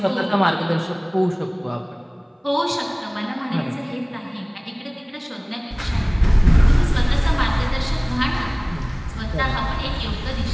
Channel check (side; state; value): both; identical; correlation 1.00